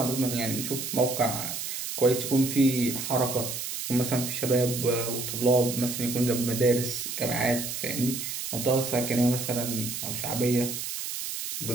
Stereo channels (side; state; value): right; noise; hiss, 5 dB below the sound